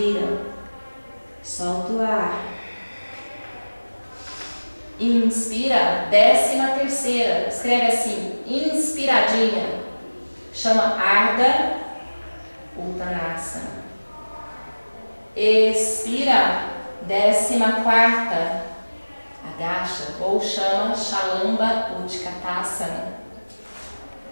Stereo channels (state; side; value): inverted; both; correlation -1.00